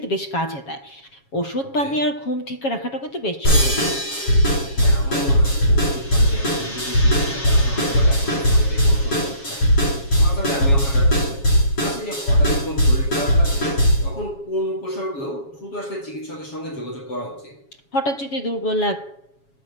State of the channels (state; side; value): late; right; 7.2 ms